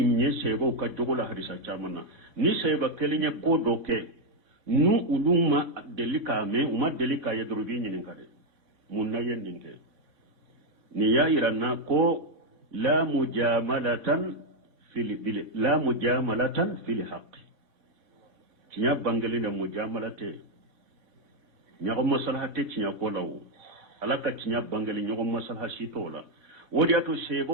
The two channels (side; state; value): left; late; 3.6 ms